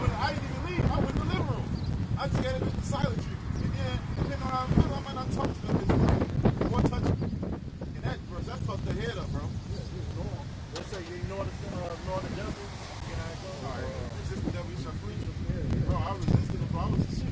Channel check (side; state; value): both; identical; correlation 1.00